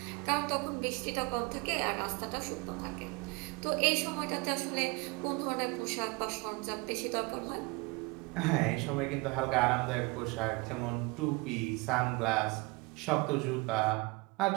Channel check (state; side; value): quieter; left; 26.7 dB